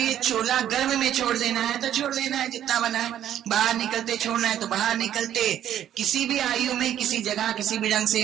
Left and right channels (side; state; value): left; quieter; 11.0 dB